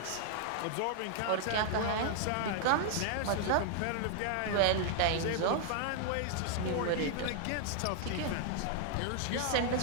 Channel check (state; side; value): different; both; correlation -0.01